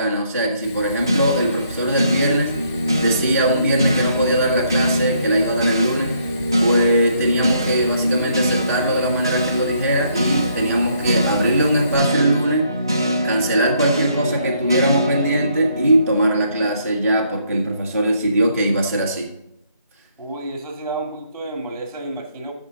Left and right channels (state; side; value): inverted; both; correlation -0.70